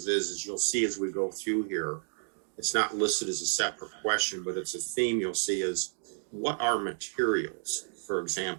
is you'll see as we go through here, it's not listed as a separate question, but it's a theme you'll see is what are materials? For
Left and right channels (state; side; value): silent; left; digital silence